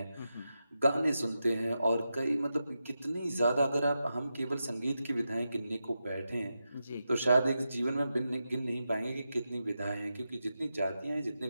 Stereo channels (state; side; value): inverted; both; correlation -0.89